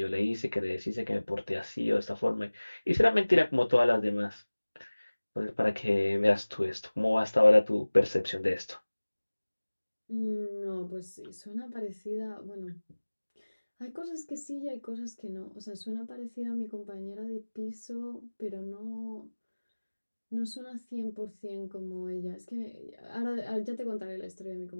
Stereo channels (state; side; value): inverted; both; correlation -1.00